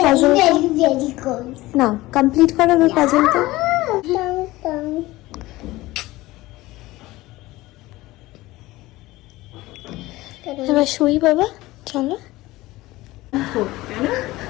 puzzle. very, very cold. না, complete করো এবার পাজলটা। এবার শুই বাবা, চলো।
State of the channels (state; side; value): quieter; right; 18.7 dB